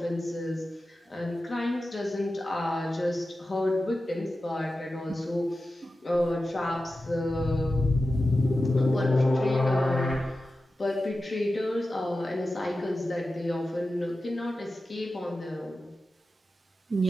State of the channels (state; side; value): normal; both; correlation 0.93